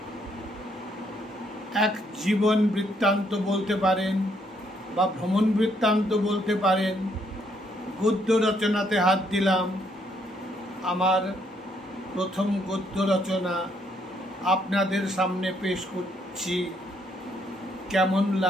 এক জীবন বৃত্তান্ত বলতে পারেন বা ভ্রমণ বৃত্তান্ত বলতে পারেন, গদ্য রচনাতে হাত দিলাম। আমার প্রথম গদ্য রচনা আপনাদের সামনে পেশ করছি। কেমন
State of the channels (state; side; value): normal; both; correlation 0.71